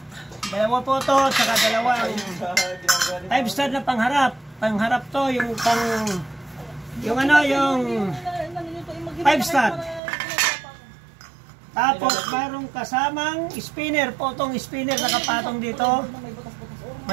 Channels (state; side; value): drops out; left; at 10.0 s